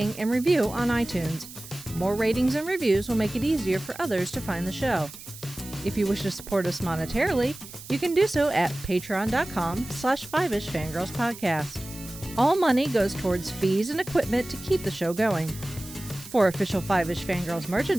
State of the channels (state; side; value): noise; right; hiss, 15 dB below the sound